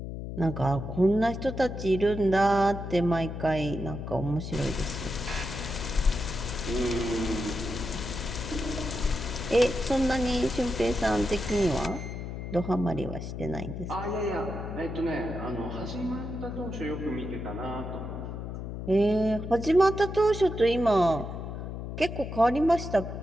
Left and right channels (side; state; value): left; noise; hum, 7 dB below the sound